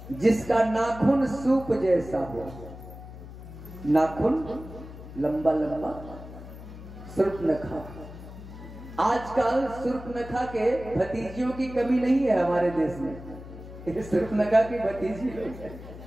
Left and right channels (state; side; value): noise; left; hum, 14 dB below the sound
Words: जिसका नाखून सूप जैसा हो, नाखून लंबा लंबा, शूर्पणखा। आजकल शूर्पणखा के भतीजियों की कमी नहीं है हमारे देश में। शूर्पणखा की भतीजी लोग हैं,